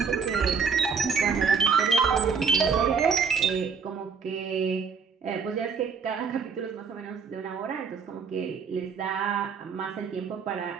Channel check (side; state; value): left; quieter; 5.8 dB